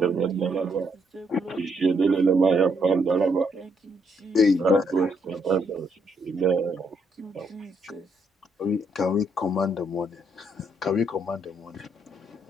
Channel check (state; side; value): normal; both; correlation 0.74